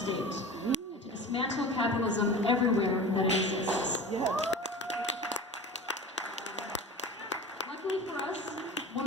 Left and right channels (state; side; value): normal; both; correlation 0.34